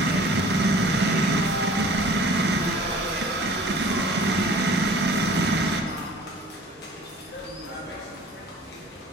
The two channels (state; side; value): normal; both; correlation 0.47